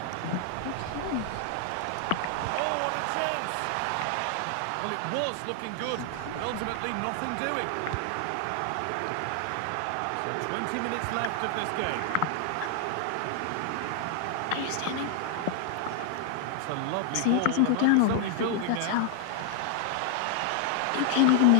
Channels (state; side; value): different; both; correlation 0.00